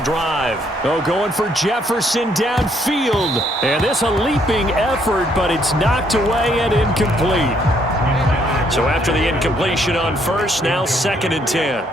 drive. Oh, going for Jefferson downfield. And this a leaping effort, but it's knocked away and incomplete. So after the incompletion on first, now 2nd and 10.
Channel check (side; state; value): both; normal; correlation 0.69